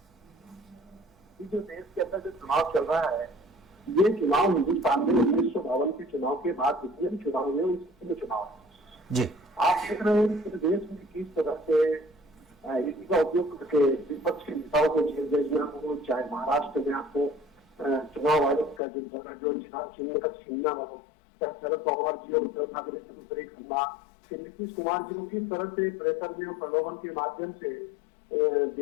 जो देश के अंदर जो चुनाव चल रहा है, ये चुनाव हिंदुस्तान में 1952 के चुनाव के बाद जितने भी चुनाव हुए उसमें चुनाव जी आप देख रहे हैं कि देश में किस तरह से इसी का उपयोग करके विपक्ष के नेताओं को जेल भेजना हो, चाहे महाराष्ट्र में आपको चुनाव आयोग का जो चिन्ह का छीनना हो, चाहे शरद पवार जी और उद्धव ठाकरे से दूसरे करना, फिर नीतीश कुमार जी को किस तरह से प्रेशर में और प्रलोभन के माध्यम से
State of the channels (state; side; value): drops out; right; at 18.8 s